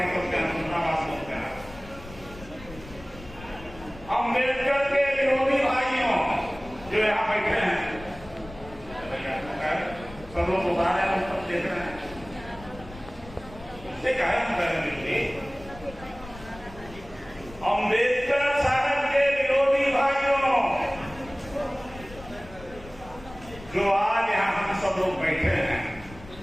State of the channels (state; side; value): noise; left; rumble, 17 dB below the sound